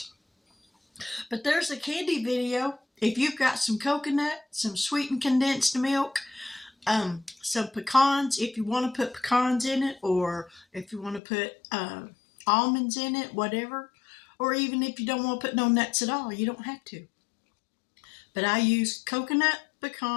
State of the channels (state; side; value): drops out; right; at 11.2 s